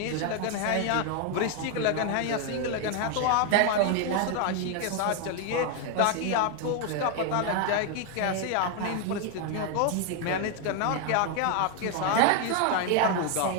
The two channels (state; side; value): different; both; correlation 0.01